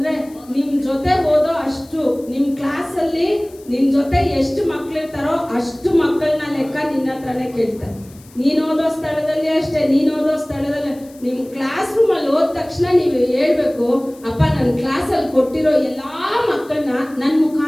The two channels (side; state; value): left; noise; hiss, 25 dB below the sound